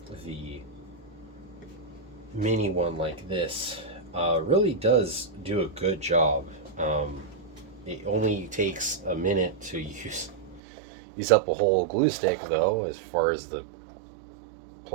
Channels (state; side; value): drops out; left; at 10.6 s